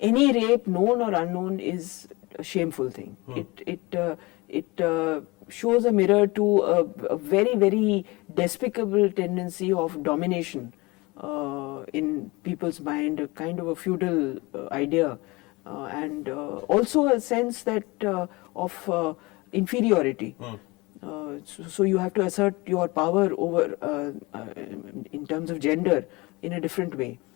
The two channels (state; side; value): quieter; right; 23.9 dB